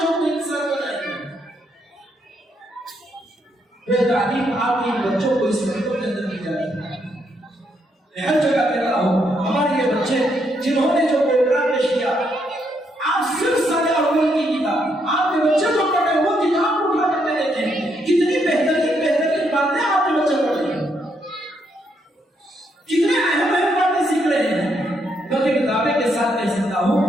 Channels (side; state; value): both; normal; correlation 0.76